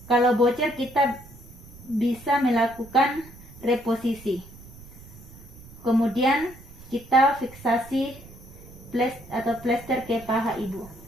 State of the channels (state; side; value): noise; right; rumble, 19 dB below the sound